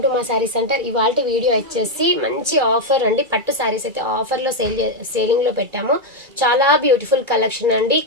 to మా sari centre. ఇవాళ వీడియో వచ్చేసి మంచి ఆఫర్ అండి. పట్టు శారీస్ అయితే ఆఫర్లో సేలింగ్లో పెట్టాము. చాలా బ్యూటిఫుల్ కలెక్షన్ అండి.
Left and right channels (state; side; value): late; left; 2.3 ms